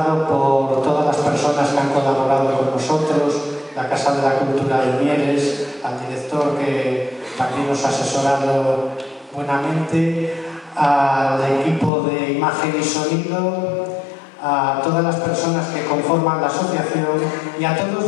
por todas las personas que han colaborado con nosotros, la Casa de la Cultura de Mieres, al director que también nos ha asesorado buenamente, al equipo de imagen y sonido, a todas las personas que conforman la asociación y a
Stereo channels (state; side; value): drops out; right; at 11.9 s